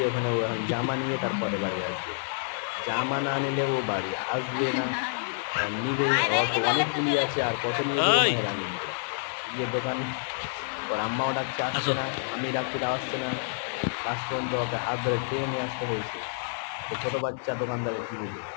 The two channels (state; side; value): silent; right; digital silence